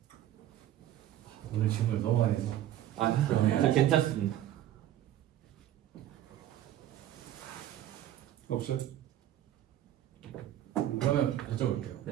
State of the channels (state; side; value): quieter; left; 12.4 dB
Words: 오늘 질문을 너무 많이 해서 저 괜찮습니다. 없어요? 그러면 여쭤볼게요.